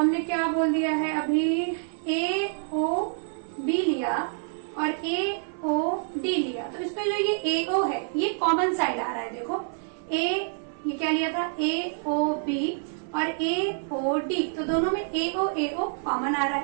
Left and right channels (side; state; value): left; silent; 60 dB below the other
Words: क्या बोल दिया है अभी? AOB लिया और AOD लिया। तो इसमें जो ये AO है ये कॉमन साइड आ रहा है। देखो ये क्या लिया था? AOB और AOD, तो दोनों में AO कॉमन आ रहा